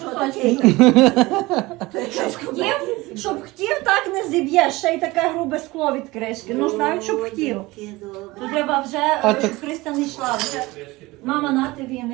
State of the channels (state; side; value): quieter; left; 21.0 dB